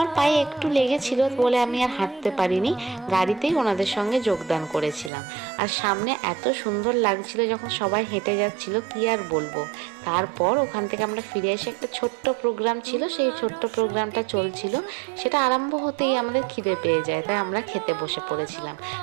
পায়ে একটু লেগেছিল বলে আমি আর হাঁটতে পারিনি, গাড়িতেই ওনাদের সঙ্গে যোগদান করেছিলাম। আর সামনে এত সুন্দর লাগছিল যখন সবাই হেঁটে যাচ্ছিল, কি আর বলবো। তারপর ওখান থেকে আমরা ফিরে এসে একটা ছোট্ট প্রোগ্রাম ছিল, সেই ছোট্ট প্রোগ্রামটা চলছিল। সেটা আরম্ভ হতেই আমাদের খিদে পেয়ে যায়, তাই আমরা খেতে বসে পড়েছিলাম।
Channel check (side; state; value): left; drops out; at 5.1 s